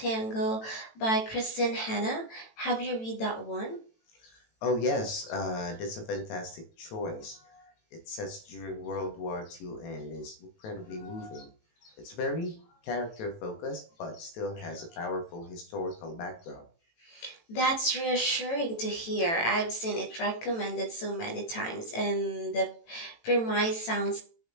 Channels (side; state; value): right; late; 18 ms